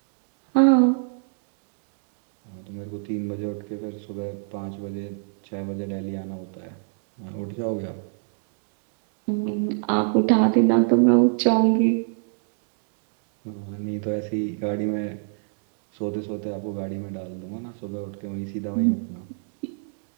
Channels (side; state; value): left; silent; digital silence